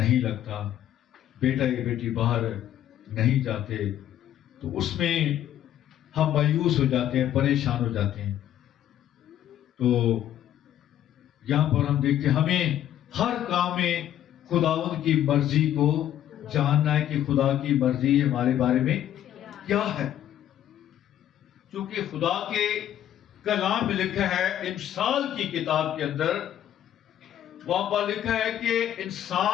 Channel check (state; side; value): quieter; right; 11.5 dB